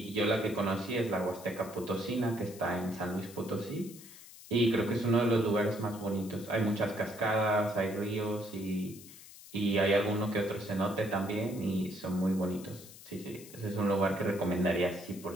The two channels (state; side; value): noise; left; hiss, 18 dB below the sound